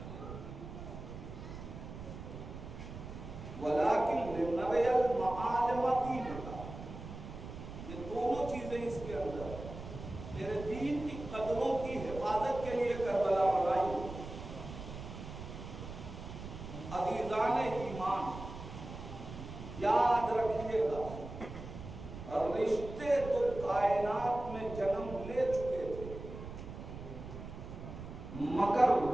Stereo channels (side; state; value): right; noise; rumble, 11 dB below the sound